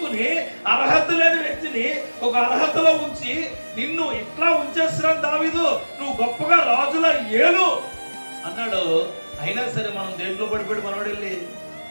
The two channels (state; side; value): inverted; both; correlation -1.00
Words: అర్హత లేని వ్యక్తిని ఒక అర్హతలో ఉంచి, నిన్ను ఇట్లా ఉంచేస్తున్నాను దావీదు, నువ్వు గొప్పగా రాజులా ఏలు అన్నాడు. అయినా సరే మనం దేంట్లో పడిపోయాడు? మనోడు వెళ్ళి